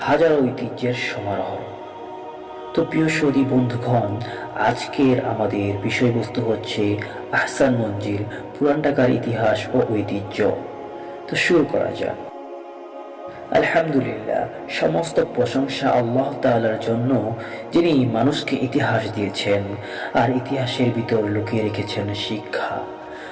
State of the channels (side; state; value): both; identical; correlation 1.00